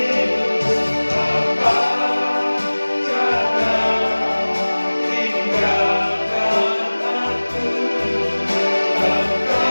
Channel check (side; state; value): both; inverted; correlation -1.00